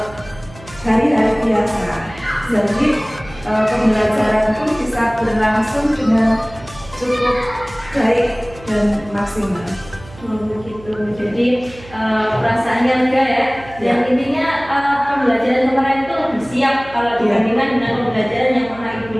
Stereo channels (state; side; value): noise; right; hum, 19 dB below the sound